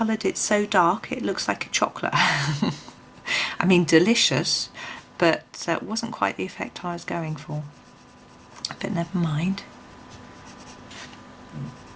it so dark it looks like a chocolate. I mean, delicious, but it wasn't quite the effect I was going for. But never mind.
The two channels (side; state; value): both; identical; correlation 1.00